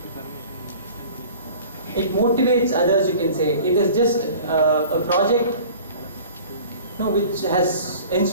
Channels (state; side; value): inverted; both; correlation -0.44